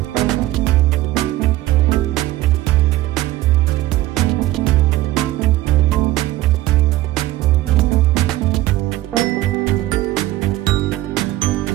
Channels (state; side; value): quieter; left; 16.2 dB